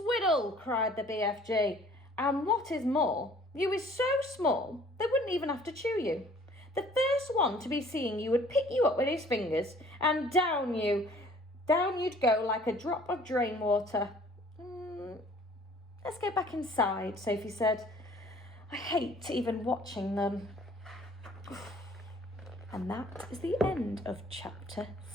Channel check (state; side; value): normal; both; correlation 0.54